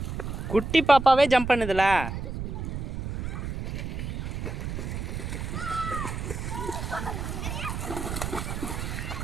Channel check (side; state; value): right; noise; rumble, 5 dB below the sound